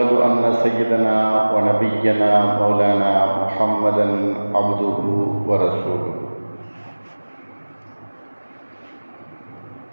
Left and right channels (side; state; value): both; inverted; correlation -1.00